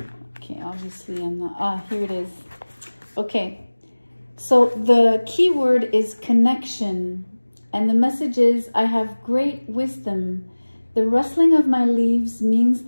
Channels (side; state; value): both; inverted; correlation -1.00